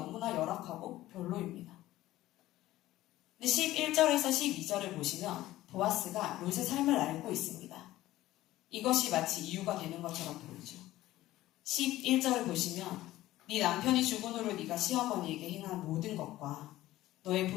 열악하고 별로입니다. 근데 11절에서 12절을 보시면 보아스가 룻의 삶을 알고 있습니다. 이것이 마치 이유가 되는 것처럼 보이죠. 11절을 보시면 네 남편이 죽은 후로 네가 시어머니에게 행한 모든 것과 너의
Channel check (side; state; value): right; quieter; 15.7 dB